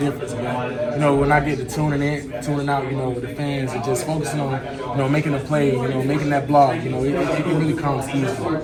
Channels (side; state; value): both; identical; correlation 1.00